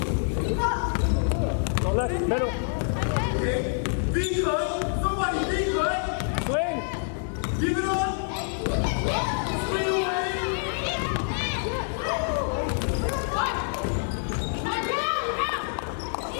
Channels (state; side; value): silent; right; digital silence